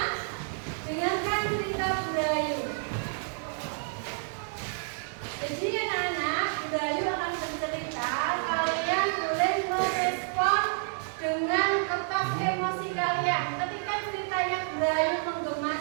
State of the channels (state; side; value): silent; left; 58 dB below the other